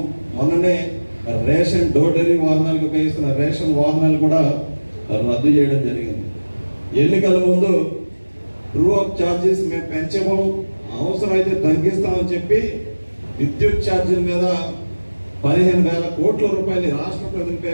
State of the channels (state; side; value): inverted; both; correlation -1.00